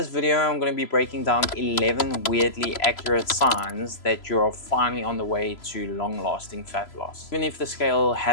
video, I'm going to be breaking down 11 weirdly accurate signs that you're finally on the way to long-lasting fat loss, even if the scale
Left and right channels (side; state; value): right; late; 3.0 ms